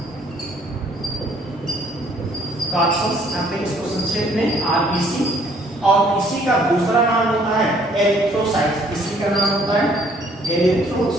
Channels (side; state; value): both; normal; correlation 0.62